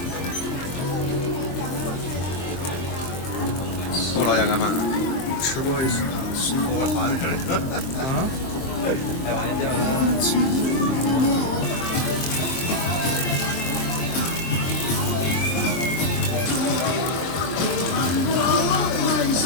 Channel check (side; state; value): right; late; 23 ms